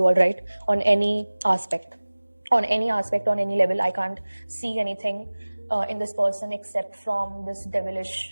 all right, on any aspect, on any level. I can't see anything in this person except from this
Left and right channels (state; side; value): inverted; both; correlation -1.00